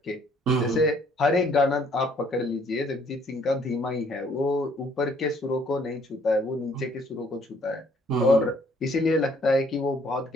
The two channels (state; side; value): normal; both; correlation 0.63